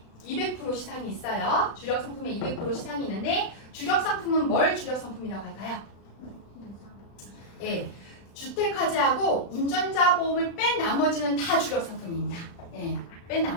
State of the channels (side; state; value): right; late; 35 ms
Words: 200% 시상이 있어요. 주력 상품에 200% 시상이 있는데 주력 상품은 뭘 주력 상품이라고 할까요? 예, 주택화재하고 운전자 보험을 뺀 나머지는 다 주력 상품입니다. 예, 뺀